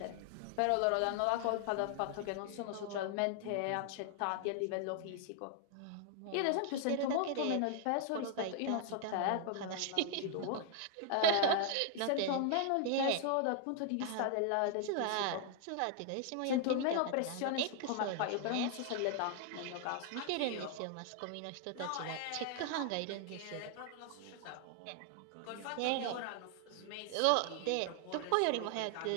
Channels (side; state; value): both; different; correlation 0.00